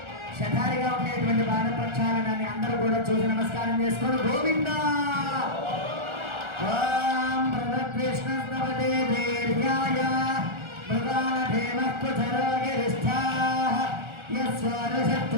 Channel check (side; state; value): left; late; 1.4 ms